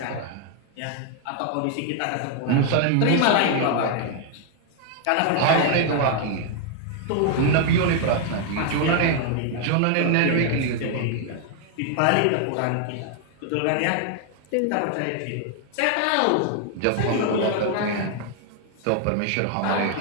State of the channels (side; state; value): both; different; correlation 0.00